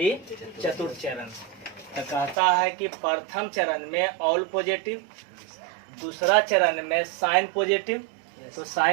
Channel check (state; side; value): drops out; left; at 2.4 s